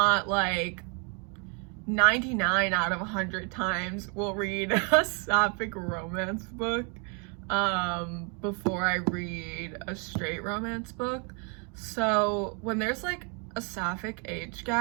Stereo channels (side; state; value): left; quieter; 36.2 dB